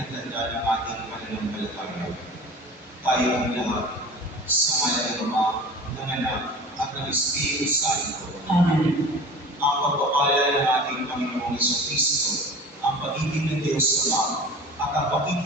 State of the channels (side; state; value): both; normal; correlation 0.39